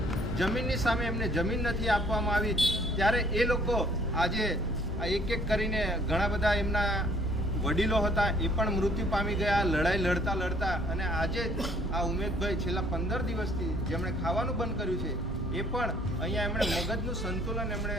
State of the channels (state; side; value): normal; both; correlation 0.60